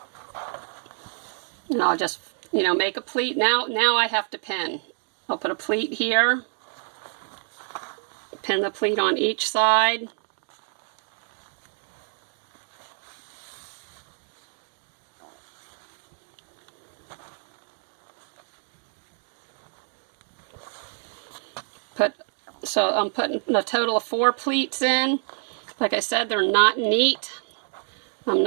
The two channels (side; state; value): left; silent; 56 dB below the other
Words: And I'll just, make a pleat. Now I have to pin. I'll put a pleat here. Pin the pleat on each side. So I'm putting a total of 4 pleats in. Like I said, they're not neat. I'm